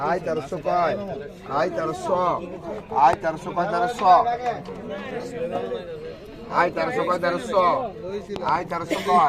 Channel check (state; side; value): identical; both; correlation 1.00